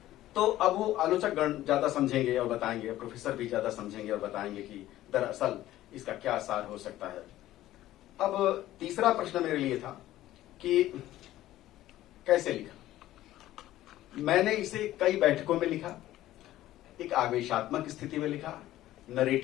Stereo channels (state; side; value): quieter; right; 14.6 dB